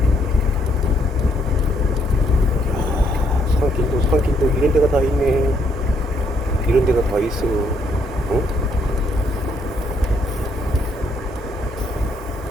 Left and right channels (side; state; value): both; normal; correlation 0.71